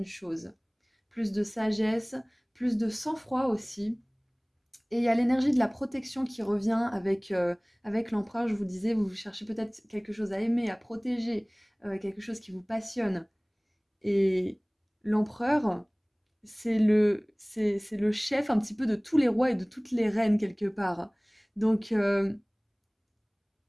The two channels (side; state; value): both; identical; correlation 1.00